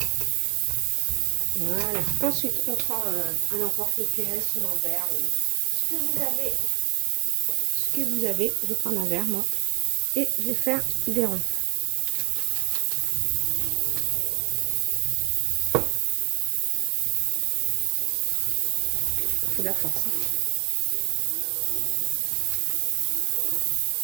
Voilà. Ensuite, on prend un emporte-pièce ou un verre ou ce que vous avez. Je vais prendre un verre, moi, et je vais faire des ronds. Il faut de la force. Hein.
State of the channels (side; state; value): left; quieter; 34.0 dB